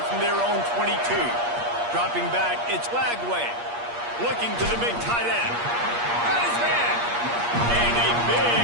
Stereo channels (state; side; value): late; left; 8.5 ms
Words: from their own 22. Dropping back, it's Lagway. Looking to the big tight end. Got his man. And a